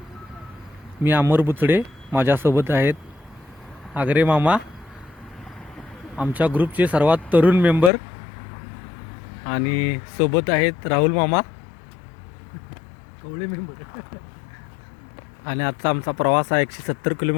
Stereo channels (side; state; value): right; drops out; at 7.9 s